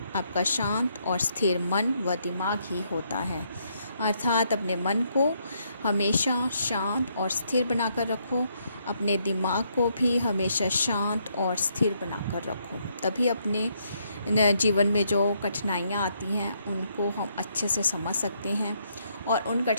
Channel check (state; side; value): inverted; both; correlation -0.74